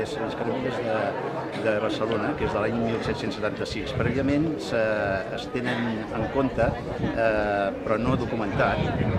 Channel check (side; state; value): both; identical; correlation 1.00